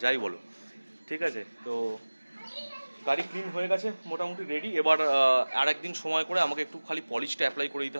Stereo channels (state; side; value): inverted; both; correlation -1.00